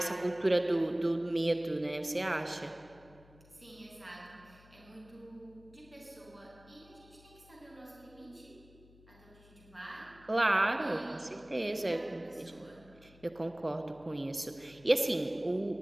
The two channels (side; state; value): left; noise; hum, 24 dB below the sound